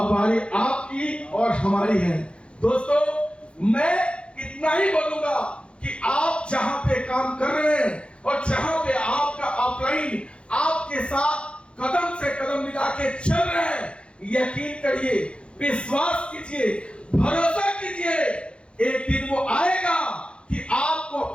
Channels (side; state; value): right; late; 0.058 ms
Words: बारी आपकी और हमारी है। दोस्तों मैं इतना ही बोलूंगा कि आप जहां पे काम कर रहे हैं और जहां पे आपका अपलाइन आपके साथ कदम से कदम मिला के चल रहे हैं, यकीन करिए, विश्वास कीजिए, भरोसा कीजिए, एक दिन वो आएगा कि आपको